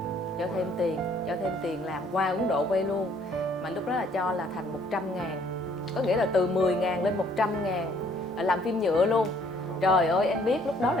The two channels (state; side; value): normal; both; correlation 0.62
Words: cho thêm tiền làm qua Ấn Độ quay luôn. Mà lúc đó là cho là thành 100.000, có nghĩa là từ 10.000 lên 100.000, làm phim nhựa luôn. Trời ơi, em biết lúc đó